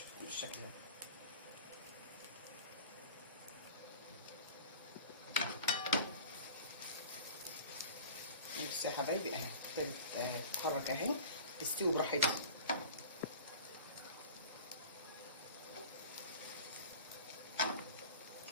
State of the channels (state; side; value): inverted; both; correlation -0.40